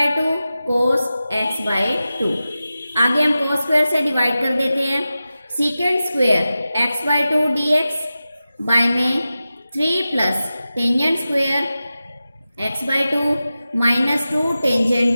cos x/2। आगे हम कोस स्क्वेयर से डिवाइड कर देते हैं, सीकेंड स्क्वेयर x/2 dx बाय में 3 plus tangent square x/2 -2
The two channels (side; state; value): both; inverted; correlation -0.94